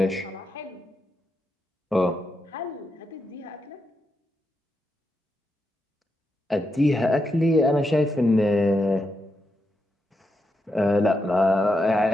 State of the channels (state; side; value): normal; both; correlation 0.84